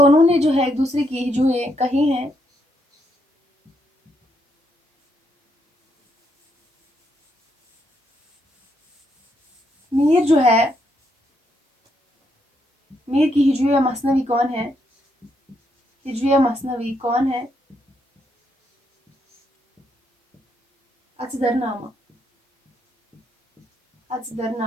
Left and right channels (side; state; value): both; normal; correlation 0.77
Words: ने जो है एक दूसरे की हिजुएं कही हैं। मीर जो है मीर की हिजुए मसनवी कौन है? हिजुए मसनवी कौन है? अजदरनामा।